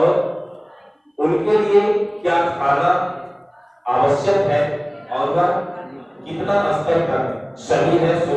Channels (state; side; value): identical; both; correlation 1.00